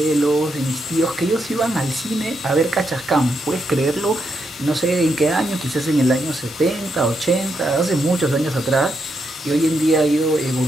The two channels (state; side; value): normal; both; correlation 0.81